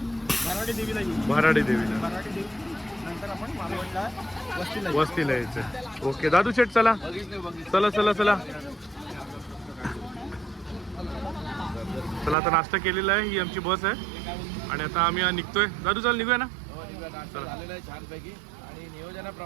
भराडी देवीला येऊ. भराडी देवीला. भराडी देवी नंतर आपण मालवणला वस्तीला येऊ. वस्तीला यायचं. ओके दादू शेठ चला चला चला चला चला. आता नाश्ता केलेला आहे. ही आमची बस आहे आणि आता आम्ही निघतोय. दादू चल निघूया ना. नाश्ता झालेला आहे छानपैकी. आणि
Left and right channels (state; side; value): drops out; left; at 12.4 s